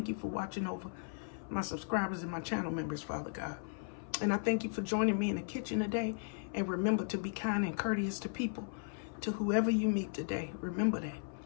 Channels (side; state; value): right; silent; 54 dB below the other